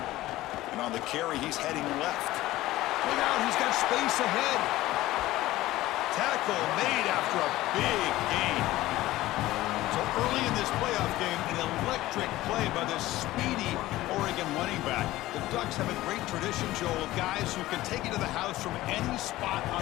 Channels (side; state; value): right; quieter; 16.6 dB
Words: And on the carry, he's heading left. Look out, he's got space ahead. Tackle made after a big gain. So early in this playoff game, an electric play by this speedy Oregon running back. The Ducks have a great tradition, Joel, of guys who can take it to the house from any spot on